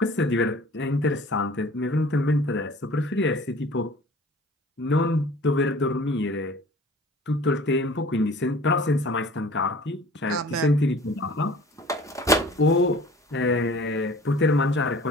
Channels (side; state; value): both; normal; correlation 0.46